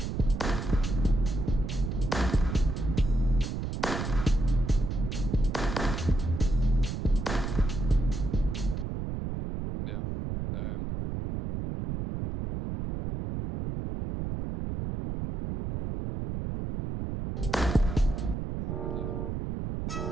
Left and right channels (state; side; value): noise; right; rumble, 4 dB below the sound